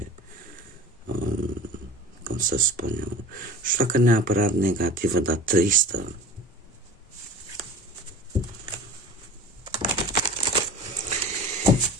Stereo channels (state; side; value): normal; both; correlation 0.38